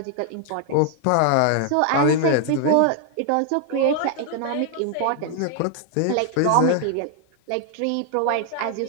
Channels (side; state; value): both; different; correlation 0.00